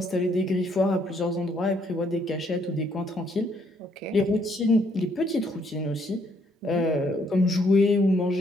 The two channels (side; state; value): both; normal; correlation 0.69